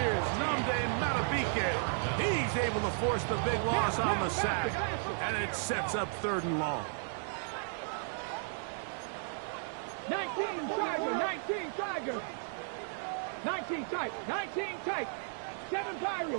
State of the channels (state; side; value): silent; left; digital silence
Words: Nnamdi Madubuike. He's able to force the big loss on the sack, and it sets up 3rd and long. 19 Tiger, 19 Tiger. 19 tight, 19 tight. 7